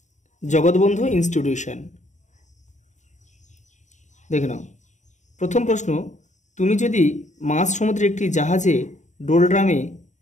জগৎবন্ধু ইনস্টিটিউশন। দেখে নাও প্রথম প্রশ্ন, তুমি যদি মাঝ সমুদ্রে একটি জাহাজে ডোলড্রামে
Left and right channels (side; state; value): right; late; 0.35 ms